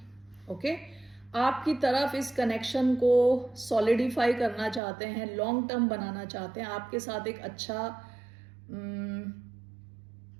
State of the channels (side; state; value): left; drops out; at 4.8 s